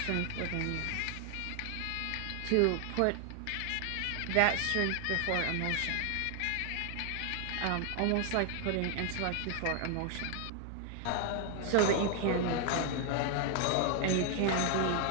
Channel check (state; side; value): different; both; correlation 0.00